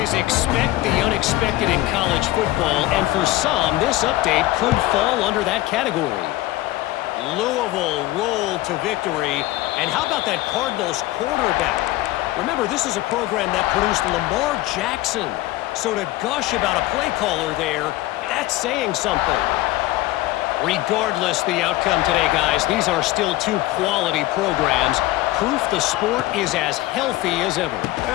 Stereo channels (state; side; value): quieter; right; 17.2 dB